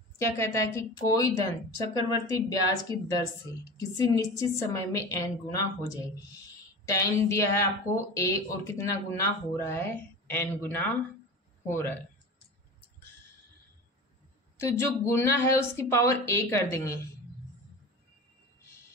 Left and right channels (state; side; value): normal; both; correlation 0.32